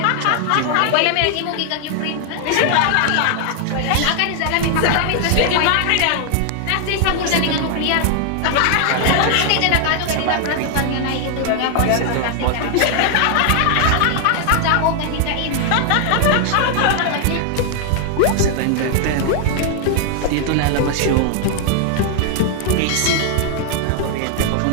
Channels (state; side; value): different; both; correlation 0.00